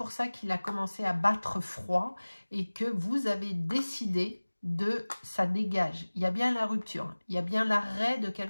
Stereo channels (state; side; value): inverted; both; correlation -1.00